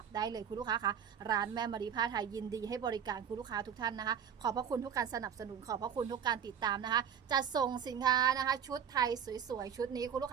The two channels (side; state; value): left; quieter; 8.1 dB